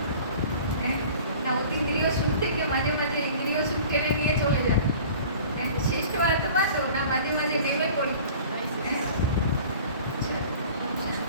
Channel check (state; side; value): inverted; both; correlation -0.44